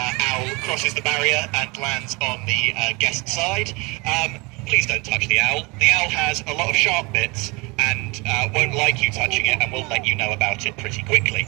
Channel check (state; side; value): quieter; left; 27.0 dB